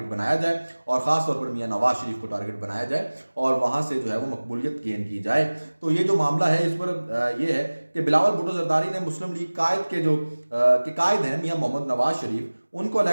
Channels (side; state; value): both; inverted; correlation -1.00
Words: बनाया जाए और ख़ास तौर पर मियां नवाज शरीफ को टारगेट बनाया जाए और वहाँ से जो है वो मकबूलियत गेन की जाए। तो ये जो मामला है इस पर ये है कि बिलावल भुट्टो जरदारी ने मुस्लिम लीग कायद के जो कायद हैं मियां मोहम्मद नवाज शरीफ उनको